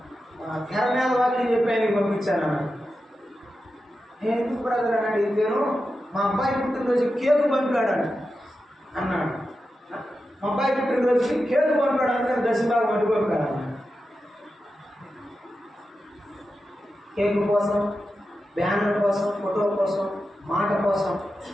తెరమేద వాక్యం చెప్పాను పంపించాను. నేను ఎందుకు బ్రదర్ అని అడిగితేను, మా అబ్బాయి పుట్టినరోజు కేకు పంపాడు అన్నాడు. మా అబ్బాయి పుట్టినరోజుకి కేకు పంపాడు అంటే దశమ భాగం అడ్డు పంపాడు అన్నాడు. కేకు కోసం, బ్యానర్ కోసం, ఫోటో కోసం, మాట కోసం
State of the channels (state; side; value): normal; both; correlation 0.90